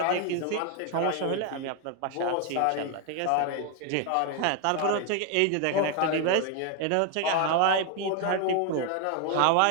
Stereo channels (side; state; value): both; different; correlation 0.01